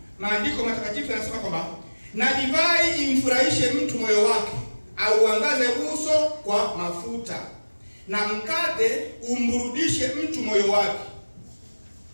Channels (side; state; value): both; inverted; correlation -1.00